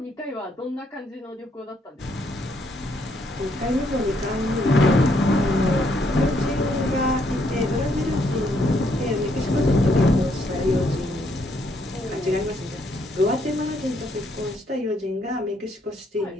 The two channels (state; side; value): normal; both; correlation 0.72